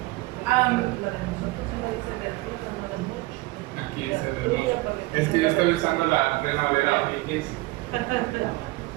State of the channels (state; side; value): quieter; left; 21.9 dB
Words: Aquí dice del mucho. Es que yo estoy usando la Reina Valera VX.